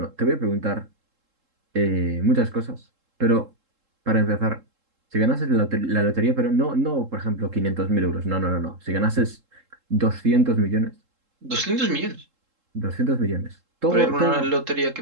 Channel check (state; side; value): late; left; 3.7 ms